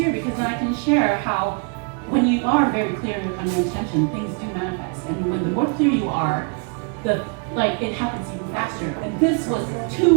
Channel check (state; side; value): quieter; left; 36.6 dB